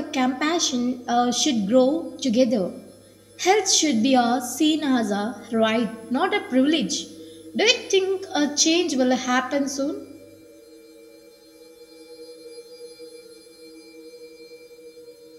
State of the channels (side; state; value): both; identical; correlation 1.00